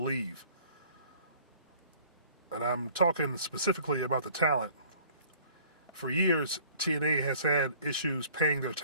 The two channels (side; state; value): both; inverted; correlation -0.53